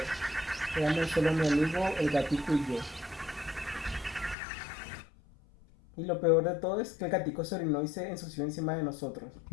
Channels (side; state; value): right; drops out; at 4.4 s